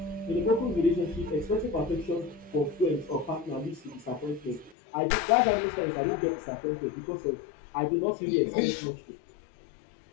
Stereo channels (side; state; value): right; drops out; at 4.8 s